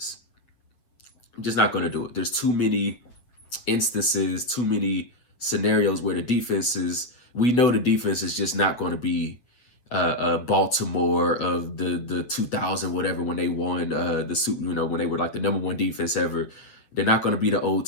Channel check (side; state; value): right; late; 8.1 ms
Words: I'm just not going to do it. There's too many instances, too many scenarios where we know the defense is just not going to be Baltimore of the 2000 whatever when they won the Super, when they were like the number 1 defense ever. They're not going to be the old